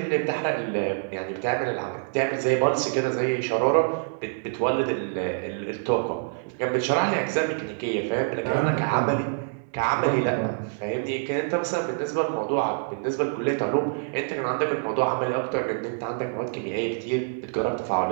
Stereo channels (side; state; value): left; silent; digital silence